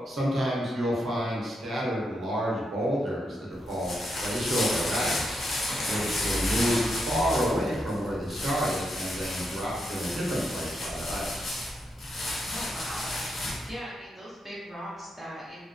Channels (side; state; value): both; normal; correlation 0.82